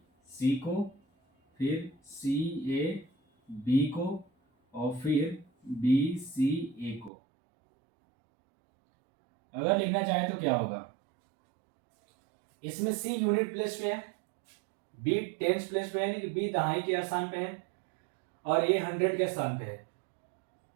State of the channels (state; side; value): drops out; left; at 7.1 s